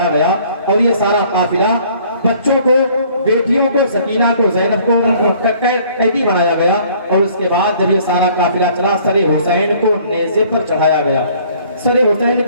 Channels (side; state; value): both; inverted; correlation -0.57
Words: گیا اور یہ سارا قافلہ بچوں کو, بیٹیوں کو, سکینہ کو, زینب کو قیدی بنایا گیا اور اس کے بعد جب یہ سارا قافلہ چلا سر حسین کو نیزے پر چڑھایا گیا. سر حسین